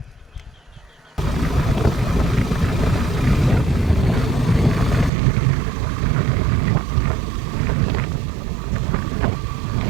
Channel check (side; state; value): left; drops out; at 5.1 s